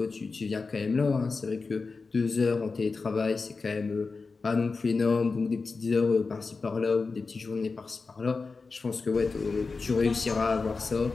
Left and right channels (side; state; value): right; quieter; 4.3 dB